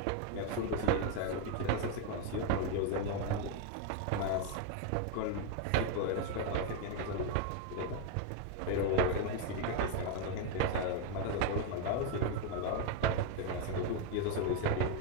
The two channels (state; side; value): different; both; correlation 0.01